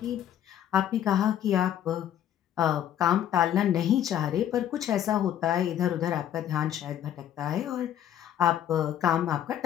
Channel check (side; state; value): right; quieter; 10.7 dB